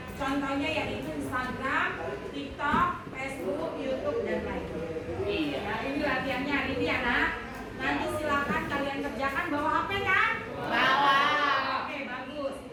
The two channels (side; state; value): both; identical; correlation 1.00